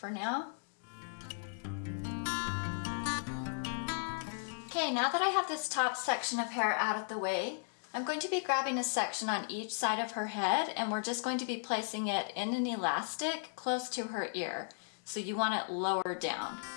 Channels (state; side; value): silent; right; digital silence